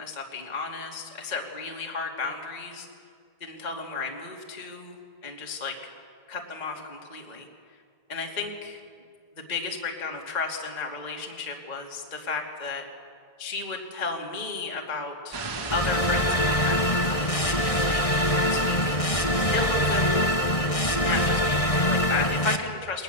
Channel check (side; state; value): right; late; 1.6 ms